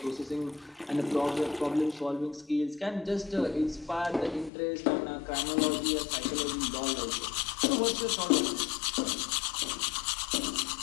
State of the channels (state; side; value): drops out; right; at 4.5 s